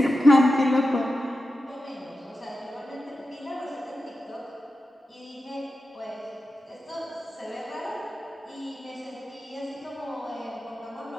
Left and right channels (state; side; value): normal; both; correlation 0.91